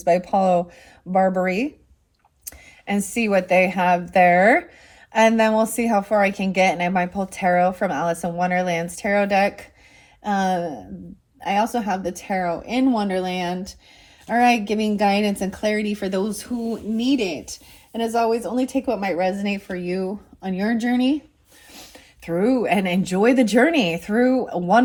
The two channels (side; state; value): both; identical; correlation 1.00